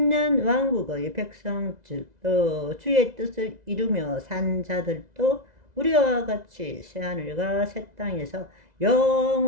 백성들도 주의 뜻을 이루며 산 자들도 우리와 같이 새하늘과 새 땅에서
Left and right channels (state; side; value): late; left; 2.0 ms